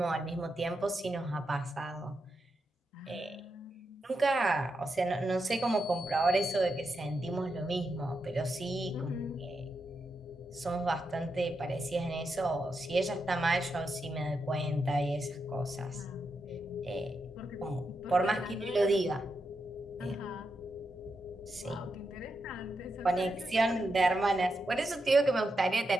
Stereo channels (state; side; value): normal; both; correlation 0.85